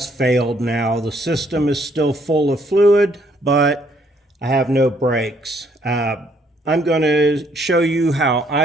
failed now. The system is still full of fluid, but I have no brakes. I'm going to show you how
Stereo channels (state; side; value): normal; both; correlation 0.67